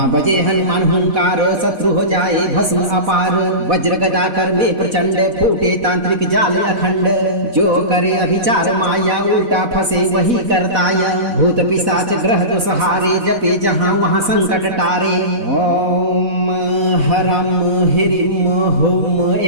बजे हनुमान हुंकार शत्रु हो जाए भस्म अपार। वज्र गदा कर में प्रचंड फूटे तांत्रिक जाल अखंड। जो करे अभिचार माया उल्टा फंसे वही करताया। भूत पिशाच ग्रह तो सहारे जपे जहाँ वहाँ संकट टारे। ओम हरम हिरिम हुम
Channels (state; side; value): late; left; 4.1 ms